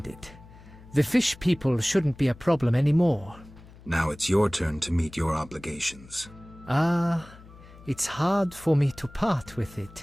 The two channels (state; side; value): noise; left; hum, 21 dB below the sound